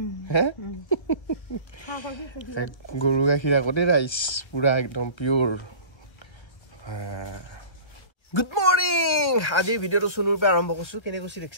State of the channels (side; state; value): right; late; 1.3 ms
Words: হে গৰু গাখীৰ আগতে ৰাইচ পুৰা একদম পিওৰ গুড মৰ্নিং আজি ভিডিঅ'টো শুনুৰ পৰা আৰম্ভ কৰিছো কেনে কৈছি